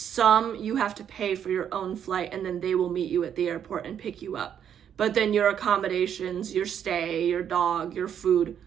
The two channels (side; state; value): left; quieter; 8.9 dB